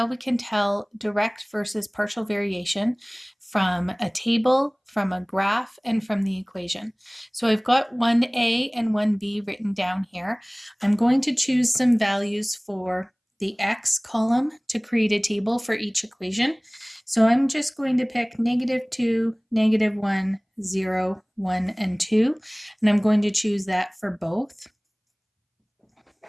we can tell direct versus partial variation from a table, from a graph, and from the equation. So I've got 1a and 1b written down here. I'm going to choose some values for the x column to create a table for each equation. So I'm just going to pick -2, -1, 0, 1, and 2, and I'm going to choose that for both.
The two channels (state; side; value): identical; both; correlation 1.00